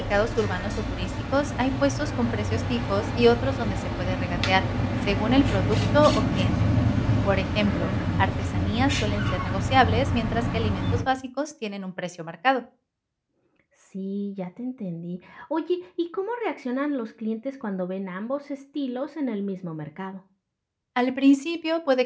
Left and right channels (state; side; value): identical; both; correlation 1.00